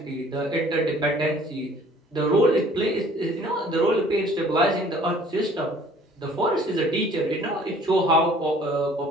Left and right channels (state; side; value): normal; both; correlation 0.54